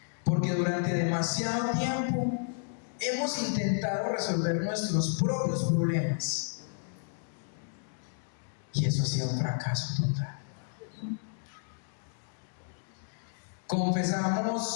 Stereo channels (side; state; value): right; silent; digital silence